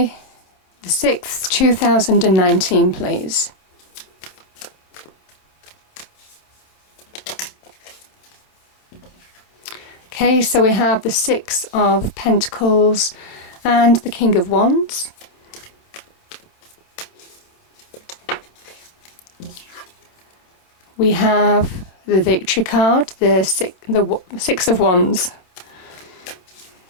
the 6th, 2019, please. Okay, so we have the 6 of Pentacles and the King of Wands. We have the Victory card, the 6 of Wands.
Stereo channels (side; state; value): right; late; 27 ms